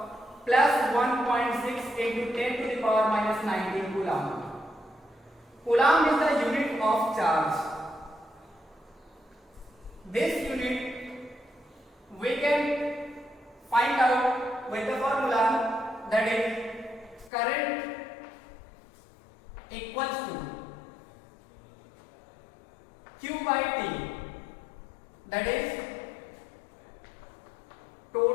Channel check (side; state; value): right; drops out; at 17.3 s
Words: plus 1.6 into 10 to the power minus 19 coulomb. Coulomb is the unit of charge. This unit we can find out with the formula, that is current equals to Q by T, that is